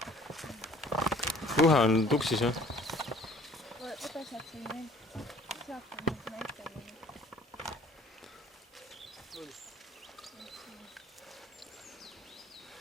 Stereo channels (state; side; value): normal; both; correlation 0.53